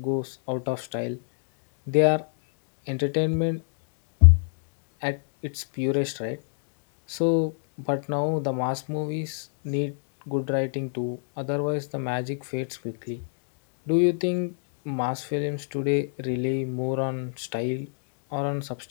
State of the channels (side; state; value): right; silent; digital silence